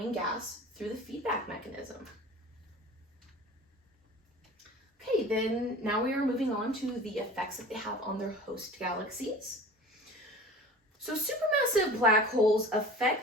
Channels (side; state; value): both; normal; correlation 0.40